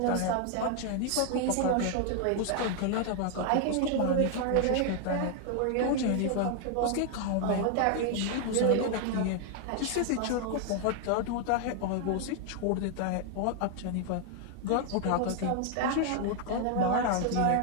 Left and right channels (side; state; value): both; different; correlation 0.00